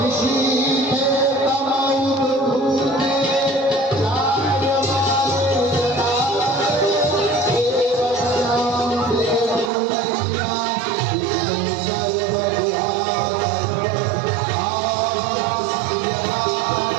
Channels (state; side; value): drops out; left; at 9.7 s